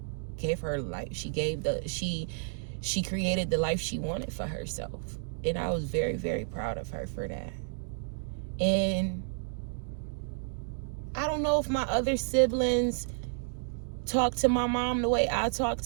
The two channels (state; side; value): silent; left; digital silence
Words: gave her life. She created the life she wanted for herself. And I was very, very proud of her for that. And I don't know if my other siblings talk to my mom the way I talk